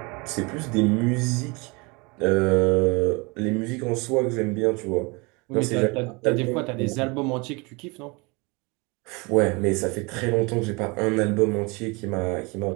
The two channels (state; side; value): quieter; left; 27.7 dB